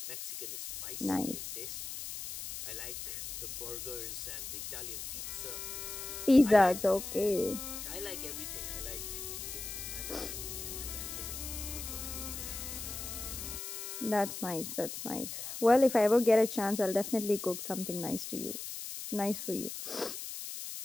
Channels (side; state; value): left; noise; hiss, 7 dB below the sound